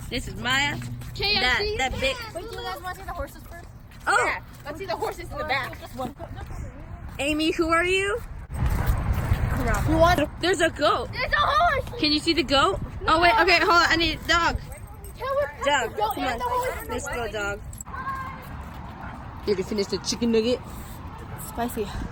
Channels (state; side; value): identical; both; correlation 1.00